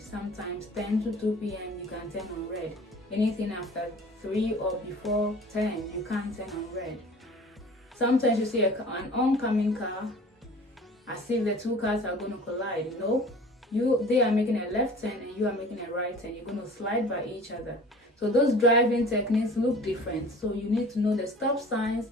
Sometimes 10 to 2 p.m. you can turn on red. Anything after 3 or before 10, you can't turn on red. Sometimes you see an oncoming car, as if the two cars are going to collide. No, they are making a left turn and you are making a right turn. You're going to slide by each other. So those driving techniques look different. So you need to know the stop signs,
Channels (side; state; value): both; normal; correlation 0.45